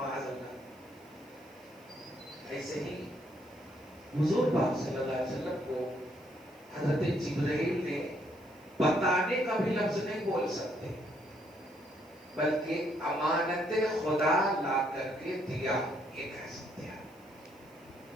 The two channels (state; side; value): noise; right; hiss, 29 dB below the sound